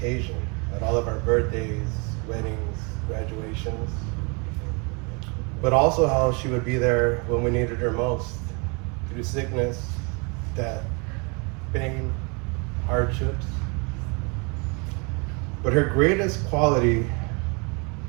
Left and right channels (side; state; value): left; quieter; 31.9 dB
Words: at all of our birthdays, weddings, graduations. But also how she would be there when we needed her most, through sickness, death, pain, hardships. But her greatest quality